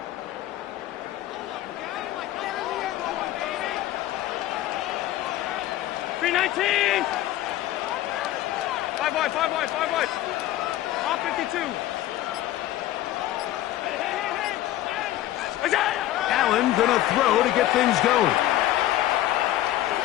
Five wide. Off 52. Allen gonna throw to get things going.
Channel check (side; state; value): right; quieter; 14.3 dB